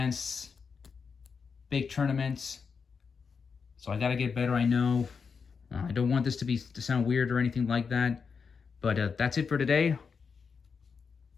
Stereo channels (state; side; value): quieter; right; 5.7 dB